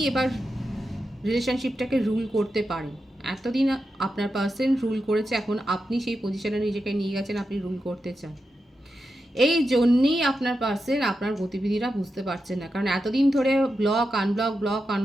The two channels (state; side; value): normal; both; correlation 0.89